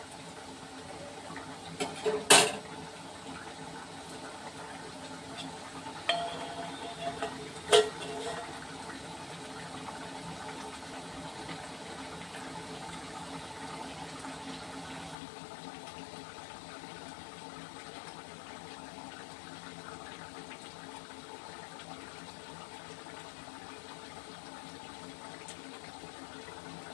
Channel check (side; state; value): right; drops out; at 15.2 s